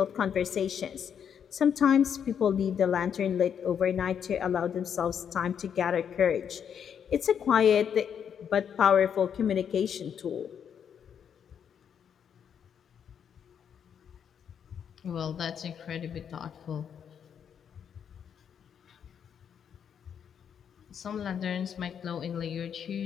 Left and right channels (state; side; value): quieter; right; 8.0 dB